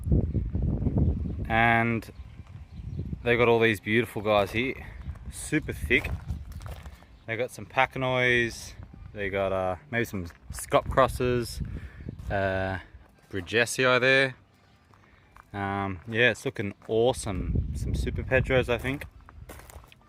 and they've got all these beautiful guys here, super thick. They got some Pacanois, they got maybe some Scott crosses, Bridgesii there. Yeah, it's looking awesome. Some Super Pedros, I think.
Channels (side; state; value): both; identical; correlation 1.00